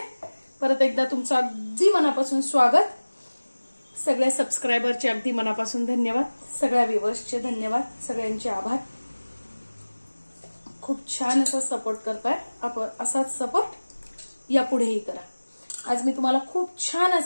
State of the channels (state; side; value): inverted; both; correlation -1.00